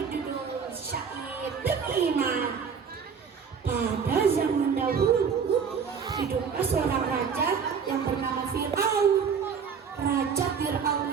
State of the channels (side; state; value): left; quieter; 6.4 dB